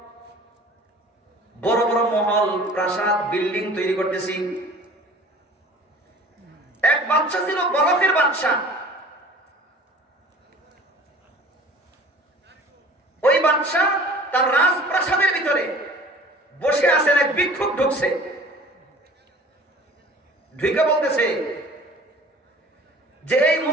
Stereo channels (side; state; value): both; normal; correlation 0.46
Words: বড় বড় মহল, প্রাসাদ, বিল্ডিং তৈরি করতেছি। এক বাদশা ছিল, বলকের বাদশা। ওই বাদশা তার রাজপ্রাসাদের ভিতরে বসে আছেন, এক ভিক্ষুক ঢুকছে। ঢুকে বলতেছে যে এই